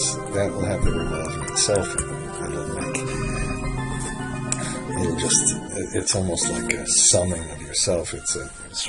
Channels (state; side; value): identical; both; correlation 1.00